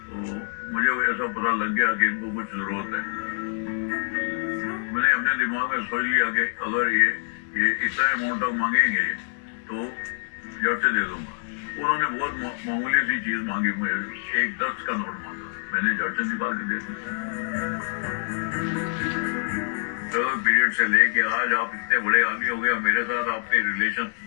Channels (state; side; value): silent; right; digital silence